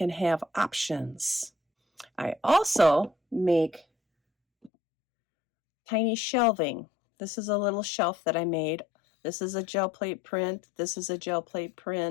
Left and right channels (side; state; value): right; drops out; at 4.7 s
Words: have options. I also make tiny shelving. This is a little shelf that I made. This is a gel plate print. This is a gel plate